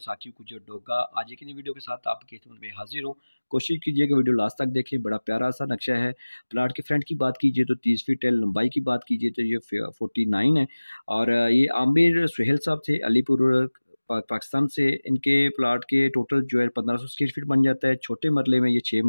कुछ डोगा। आज एक नई वीडियो के साथ आपकी खिदमत में हाजिर हूं। कोशिश कीजिएगा वीडियो लास्ट तक देखें। बड़ा प्यारा सा नक्शा है। प्लाट के फ्रंट की बात कीजिए तो 30 फीट है, लंबाई की बात कीजिए तो ये 49 है। और ये आमिर सुहेल साहब थे अलीपुर पाकिस्तान से। इनके प्लाट के टोटल जो है 1500 स्क्वायर फीट बन जाता है। छोटे मरले में ये 6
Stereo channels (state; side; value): inverted; both; correlation -1.00